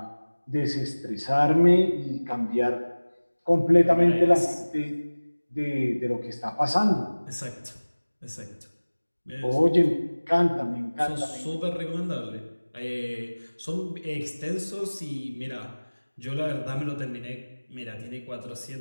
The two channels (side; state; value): both; inverted; correlation -1.00